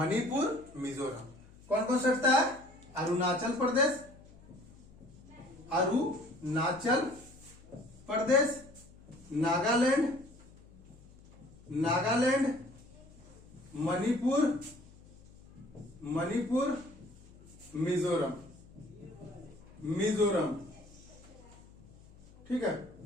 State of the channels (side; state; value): left; noise; hum, 23 dB below the sound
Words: मिजोरम। कौन कौन सटता है, अरुणाचल प्रदेश, नागालैंड, मणिपुर, मिजोरम, ठीक है।